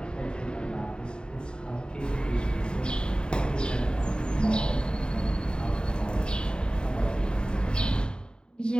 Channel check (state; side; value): late; right; 0.049 ms